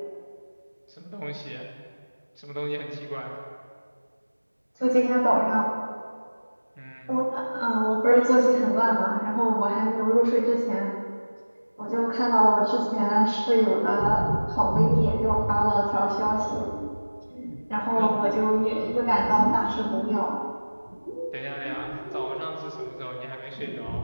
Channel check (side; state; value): both; inverted; correlation -1.00